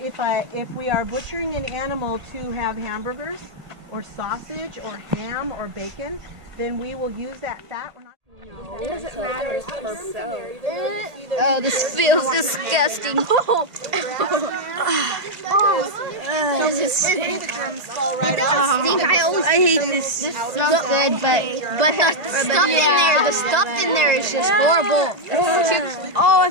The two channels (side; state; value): left; late; 1.7 ms